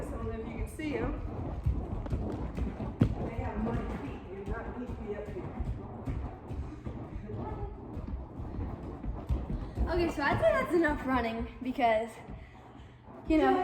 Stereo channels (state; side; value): identical; both; correlation 1.00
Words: I don't know if you can see them. They have muddy feet. They do not need to be up here. Okay, so I'd say that's enough running because, you We don't know.